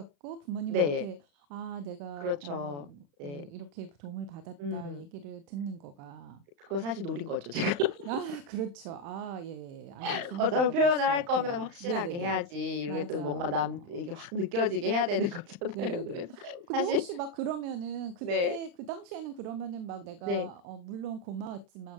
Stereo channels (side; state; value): left; late; 35 ms